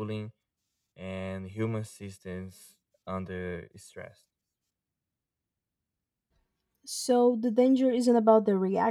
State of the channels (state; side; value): identical; both; correlation 1.00